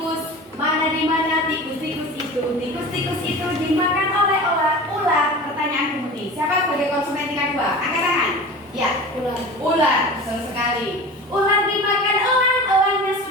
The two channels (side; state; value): both; normal; correlation 0.35